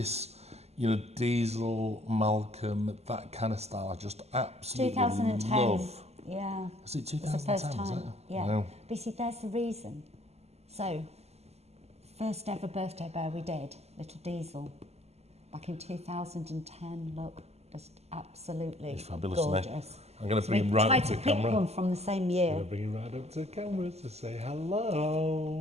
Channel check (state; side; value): late; left; 0.30 ms